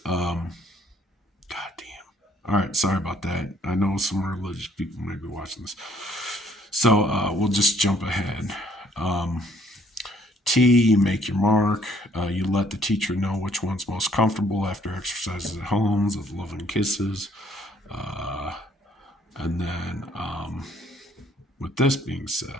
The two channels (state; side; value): normal; both; correlation 0.64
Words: God damn. All right, sorry about that. I know some religious people may be watching this. So we'll just jump ahead. T, you make your mark. You let the teacher know which one's most comfortable after exercises at homes with loving kisses. And then with this being